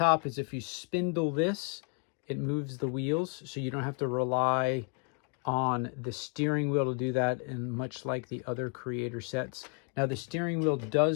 is if you spindle this, it moves the wheels, so you don't have to rely on the steering wheel to do that, and much like the other Creator sets. Now the steering wheel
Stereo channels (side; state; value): right; quieter; 39.1 dB